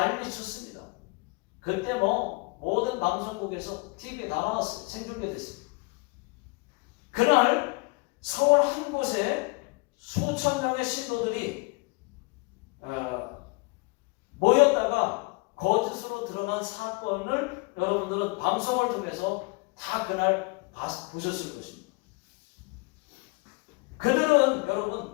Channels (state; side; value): quieter; right; 28.1 dB